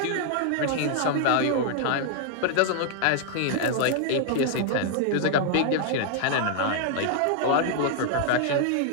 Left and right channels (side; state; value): both; different; correlation -0.01